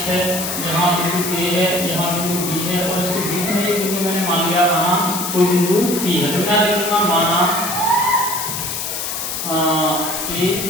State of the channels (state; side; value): noise; left; hiss, 4 dB below the sound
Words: है, यहाँ बिंदु A है, यहाँ बिंदु B है और इसके बीच में एक बिंदु मैंने मान लिया, माना कोई बिंदु P है। तो मैं लिखूंगा माना A,